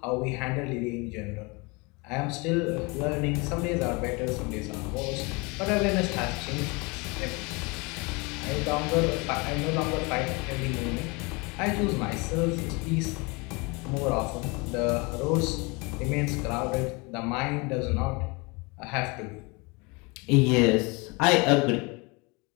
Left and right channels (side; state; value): right; quieter; 28.0 dB